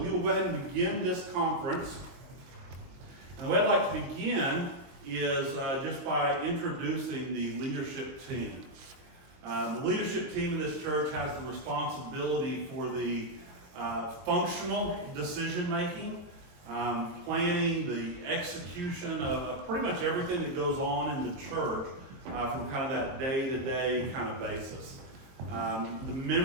will go ahead and begin this conference. And the way I'd like to begin is just by introducing the leadership team. The leadership team in this church has the responsibility for the functional decision making, planning, the execution of pretty much everything that goes on in the church. From kind of that day-to-day kind of basis. The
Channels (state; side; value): late; left; 22 ms